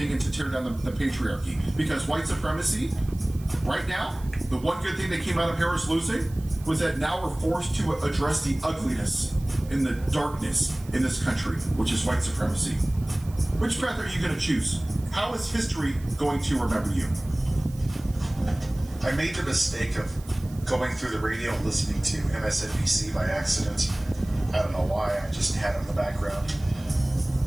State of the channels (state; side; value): noise; right; hiss, 22 dB below the sound